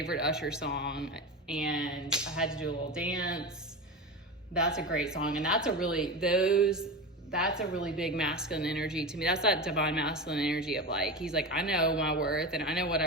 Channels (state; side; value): normal; both; correlation 0.24